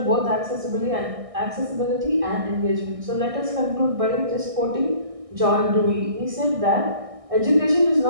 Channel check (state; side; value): late; left; 1.6 ms